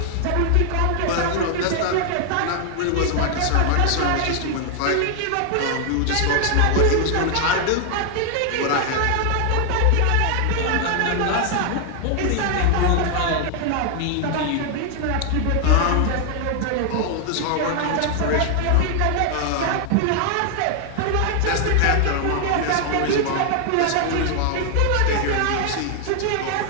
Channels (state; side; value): different; both; correlation 0.00